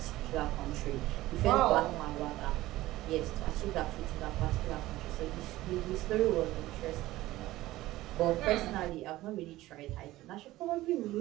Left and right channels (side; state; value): left; quieter; 16.8 dB